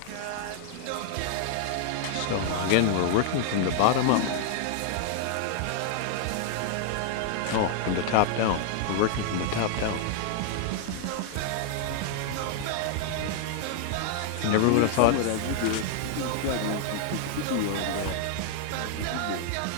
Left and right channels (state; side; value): different; both; correlation 0.00